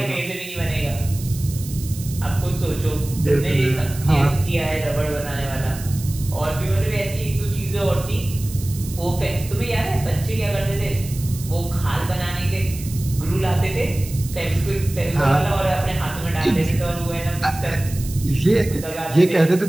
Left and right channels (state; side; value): noise; right; hiss, 14 dB below the sound